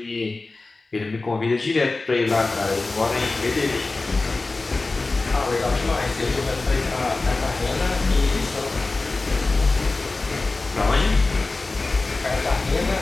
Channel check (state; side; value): quieter; right; 3.4 dB